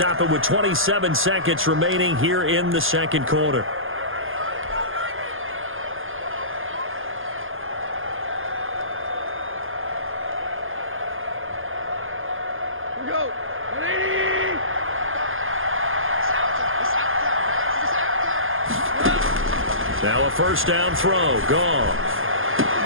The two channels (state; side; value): late; left; 0.59 ms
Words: it with 27 seconds remaining here in the second quarter. Now a first down throw. Gone.